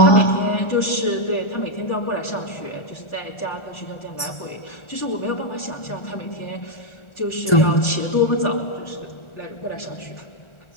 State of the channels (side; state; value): right; late; 1.4 ms